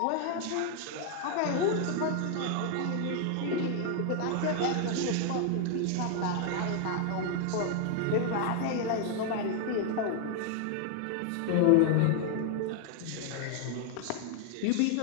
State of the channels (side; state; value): both; different; correlation 0.00